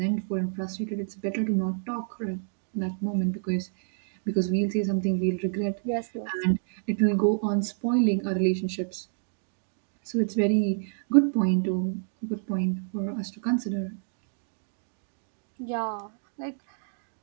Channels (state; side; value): silent; left; digital silence